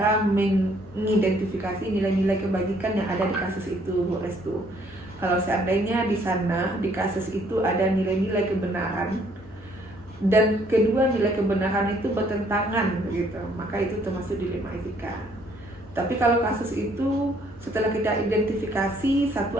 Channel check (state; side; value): normal; both; correlation 0.64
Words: mengidentifikasi nilai-nilai kebajikan yang ada di kasus itu, Bu Restu. Kalau seandainya di sana, di kasus itu ada nilai-nilai kebenaran, dan kedua nilai kebenaran itu bertentangan, begitu, maka itu termasuk dilema etika. Tapi kalau kasus itu setelah kita identifikasi, satu